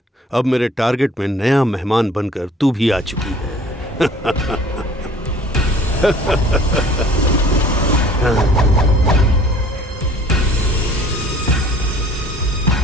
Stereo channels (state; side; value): normal; both; correlation 0.51